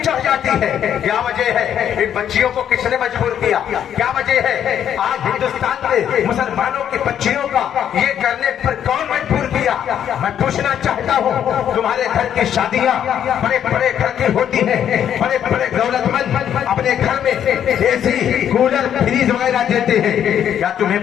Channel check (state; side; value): quieter; right; 9.6 dB